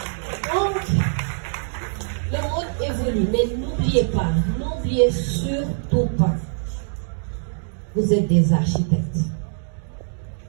Donc, le monde évolue, mais n'oubliez surtout pas, vous êtes des architectes.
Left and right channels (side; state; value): left; silent; digital silence